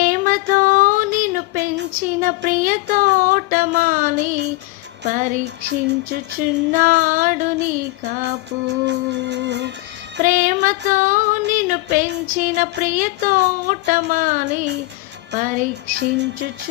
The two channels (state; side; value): quieter; right; 21.6 dB